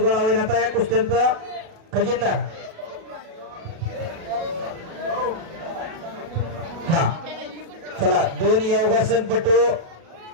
होईल. आता या कुस्त्यांचा खजिनदार. हा चला 2 योगासन पटू.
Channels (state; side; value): late; left; 37 ms